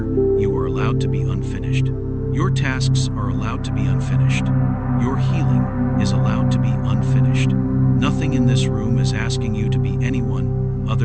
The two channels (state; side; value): identical; both; correlation 1.00